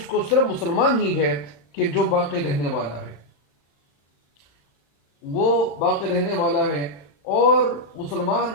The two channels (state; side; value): late; right; 35 ms